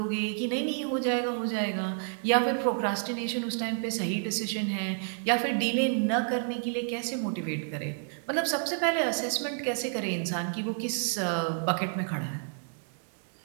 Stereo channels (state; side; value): silent; left; digital silence